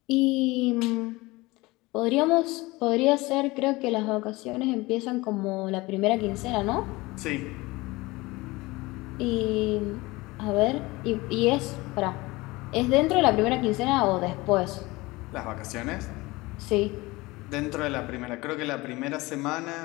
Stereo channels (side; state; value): right; quieter; 21.7 dB